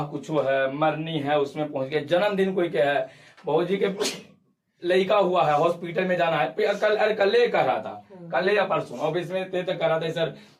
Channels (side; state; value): both; identical; correlation 1.00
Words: कुछ है, मरनी है उसमें पहुंच गए, जन्मदिन कोई क्या है, बहू जी के लड़का हुआ है, हॉस्पिटल में जाना है, कल कह रहा था, कल या परसों ऑफिस में थे तो कह रहा था सर